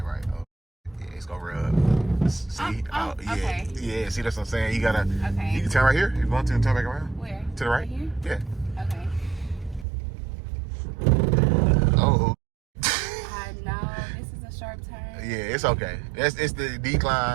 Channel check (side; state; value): left; drops out; at 9.9 s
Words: right. Oh, yeah, it's gonna rub. See? Yeah. Okay. Yeah, see, that's what I'm saying. You gotta. Okay. You can turn right here. You want to turn back around? Where? To the right? Right here? Yeah. Okay. Oh. I know. This is a sharp turn. Yeah, it's okay. It's the